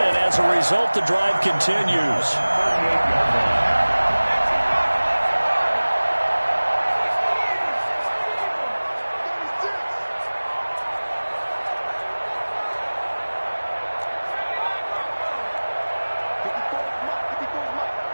and as a result, the drive continues.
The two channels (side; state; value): both; inverted; correlation -1.00